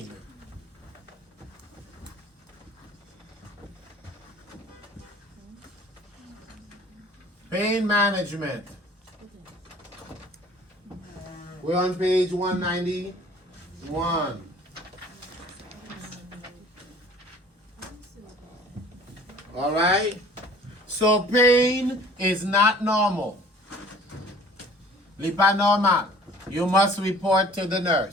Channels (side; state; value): both; normal; correlation 0.49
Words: Pain management. We're on page 191. All right? So pain is not normal. Li pas normal. You must report to the